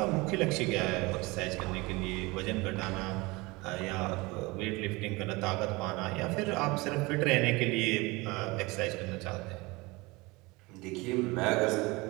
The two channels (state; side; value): quieter; left; 23.7 dB